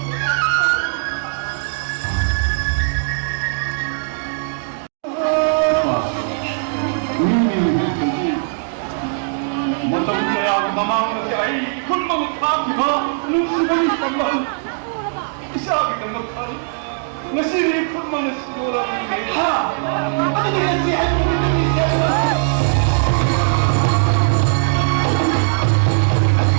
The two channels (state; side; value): silent; left; digital silence